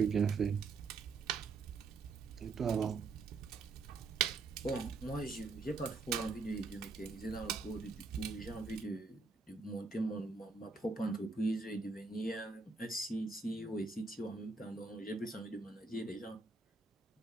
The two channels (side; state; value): left; quieter; 4.2 dB